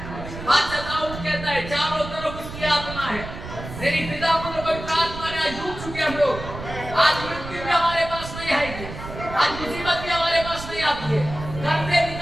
बादशाह दाऊद कहता है चारों तरफ उसकी आत्मा है। तेरी पिता पुत्र पवित्र आत्मा ने आज डूब चुके हम लोग। आज मृत्यु भी हमारे पास नहीं आएगी, आज मुसीबत भी हमारे पास नहीं आती है। घर से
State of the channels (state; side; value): noise; right; rumble, 10 dB below the sound